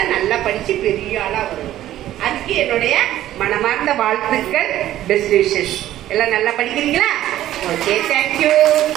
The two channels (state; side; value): quieter; left; 13.2 dB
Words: நல்லா படிச்சு பெரிய ஆளா வரும். அதுக்கு என்னுடைய மனமார்ந்த வாழ்த்துக்கள், பெஸ்ட் விஷஸ். எல்லாம் நல்லா படிக்கிறீங்களா? Okay, thank you.